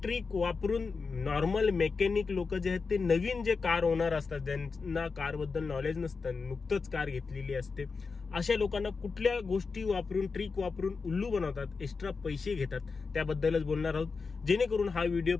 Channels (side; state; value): right; quieter; 4.7 dB